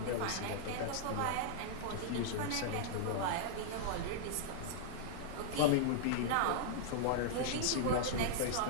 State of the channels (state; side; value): different; both; correlation -0.02